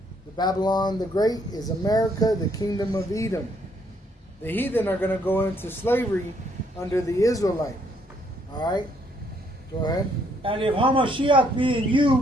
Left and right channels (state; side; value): normal; both; correlation 0.69